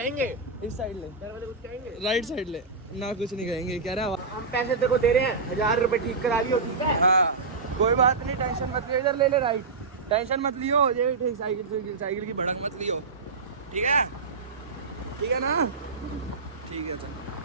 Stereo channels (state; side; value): quieter; left; 4.3 dB